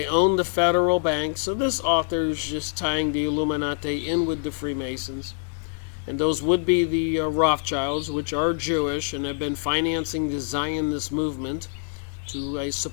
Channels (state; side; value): silent; right; digital silence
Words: own the federal bank. So this author is just tying the Illuminati in with the Freemasons. And those would be the Rothschilds, which are Jewish and have been financing the Zionist movement to, I